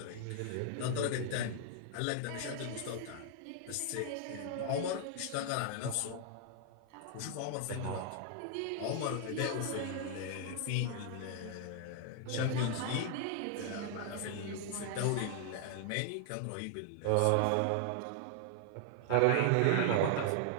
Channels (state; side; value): different; both; correlation 0.00